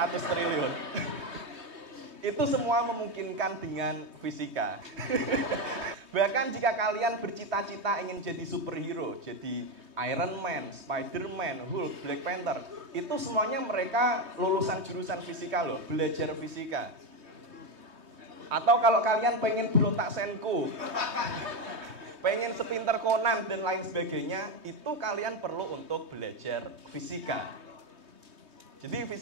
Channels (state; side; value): late; left; 3.2 ms